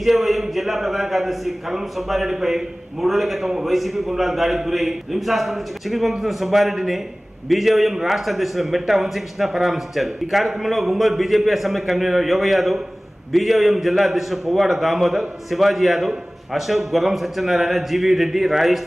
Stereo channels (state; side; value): normal; both; correlation 0.98